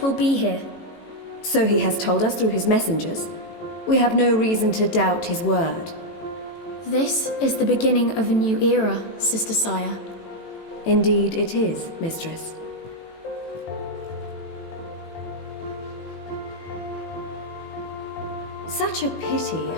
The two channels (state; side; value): late; right; 18 ms